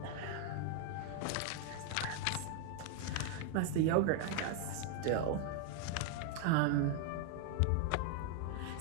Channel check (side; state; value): both; different; correlation 0.00